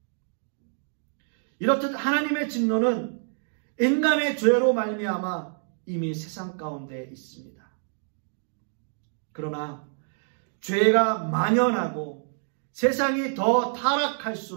이렇듯 하나님의 진노는 인간의 죄로 말미암아 이미 세상 가운데 있습니다. 그러나 죄가 만연하고 세상이 더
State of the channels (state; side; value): silent; left; 60 dB below the other